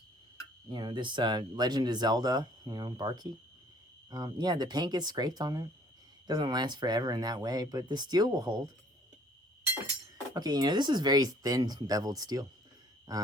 Legend of Zelda, bar key. Yeah, the paint gets scraped on it. Doesn't last forever in that way, but the steel will hold. Okay, this is very thin beveled steel.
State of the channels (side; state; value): both; normal; correlation 0.57